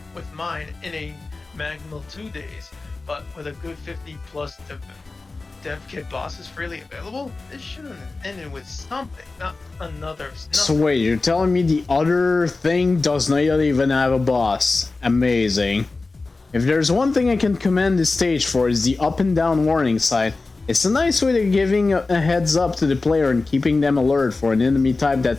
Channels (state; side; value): quieter; right; 3.6 dB